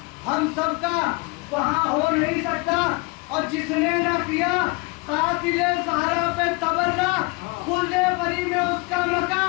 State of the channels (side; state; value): right; quieter; 26.7 dB